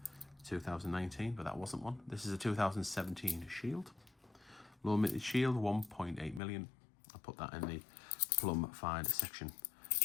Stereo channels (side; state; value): right; drops out; at 6.4 s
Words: 2019, but that wasn't one. This is a 2017 Shield. Low mintage Shield, 1.8 million. I'll put that in the plum find section.